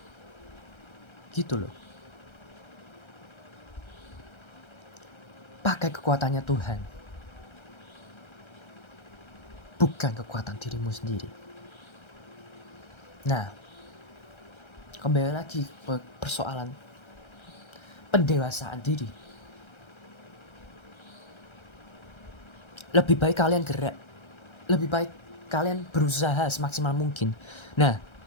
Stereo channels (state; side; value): late; right; 1.3 ms